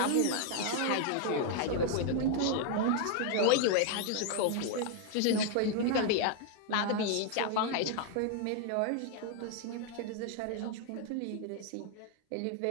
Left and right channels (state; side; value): different; both; correlation 0.01